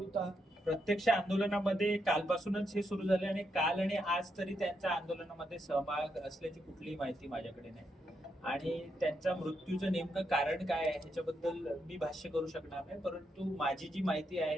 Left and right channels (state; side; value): normal; both; correlation 0.81